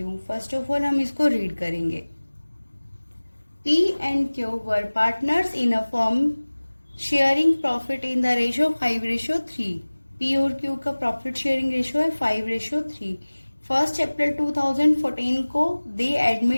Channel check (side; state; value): both; inverted; correlation -1.00